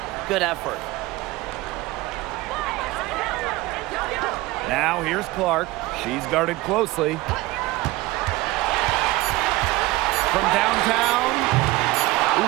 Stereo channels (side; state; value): left; quieter; 19.4 dB